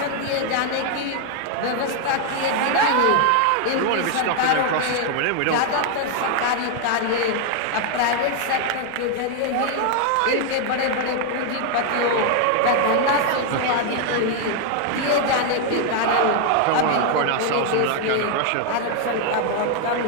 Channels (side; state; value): both; different; correlation 0.00